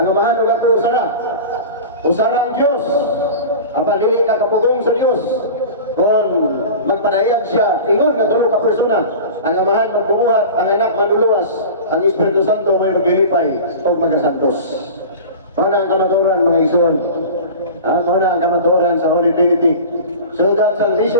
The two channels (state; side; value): inverted; both; correlation -0.34